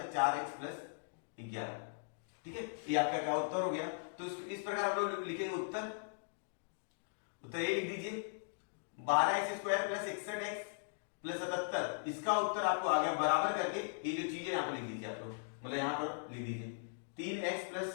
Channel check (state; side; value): silent; right; digital silence